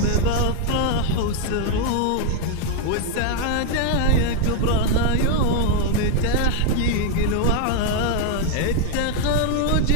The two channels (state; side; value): different; both; correlation 0.00